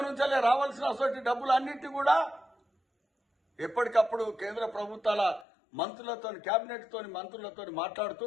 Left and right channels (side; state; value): right; drops out; at 5.5 s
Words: నుంచి రావాల్సిన డబ్బులు అన్నింటి కూడా ఎప్పటికప్పుడు కేంద్ర ప్రభుత్వాల మంత్రులతో, కేబినెట్తో మంత్రులతో మాట్లాడుతూ